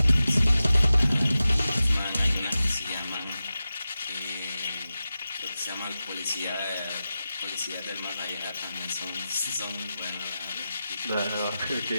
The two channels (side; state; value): both; inverted; correlation -0.93